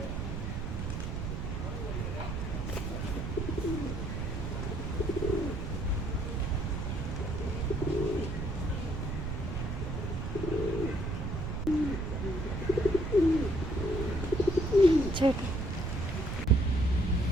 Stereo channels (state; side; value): noise; right; rumble, 3 dB below the sound